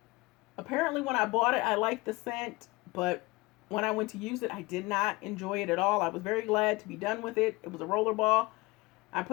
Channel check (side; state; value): right; quieter; 22.4 dB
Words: Apparently when I bought it, I liked the scent, but when I went to use it, I did not enjoy it at all. I was very glad to be done with it. It was a rollerball. I